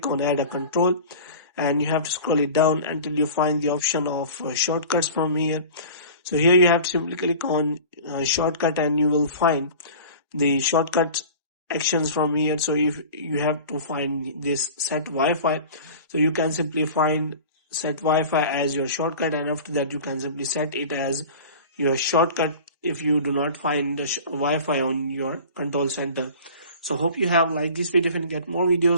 on add a control, and you have to scroll it down until you find the option of shortcuts from here. So here you have to simply click on shortcut, and you will find the shortcut actions from here. So if you have to find this set Wi-Fi, so you can simply find set Wi-Fi as your shortcut, and after that you can simply set it as your shortcut if you do not find the Wi-Fi on your control center. So hope you have liked this video. If you get more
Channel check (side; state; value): both; inverted; correlation -0.39